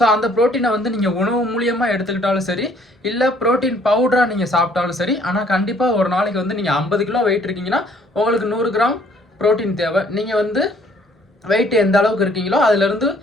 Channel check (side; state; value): both; normal; correlation 0.61